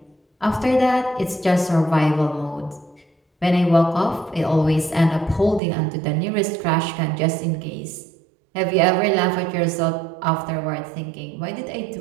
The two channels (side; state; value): left; drops out; at 5.6 s